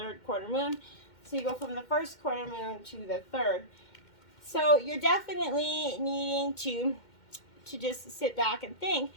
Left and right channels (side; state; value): right; late; 2.1 ms